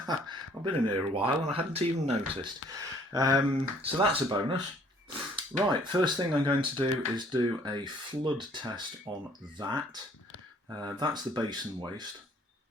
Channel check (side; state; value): both; normal; correlation 0.59